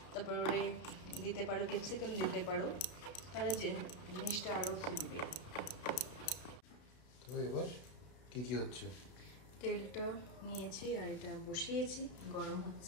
তারপরে দিতে পারো ক্যাপসিকাম দিতে পারো, তাহলে জিনিসটা আরো ফুটবে। তো এবার কি কি হচ্ছে? তেলটা নিয়েছি আর এটা বসিয়েছি, গরম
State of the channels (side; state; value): right; late; 32 ms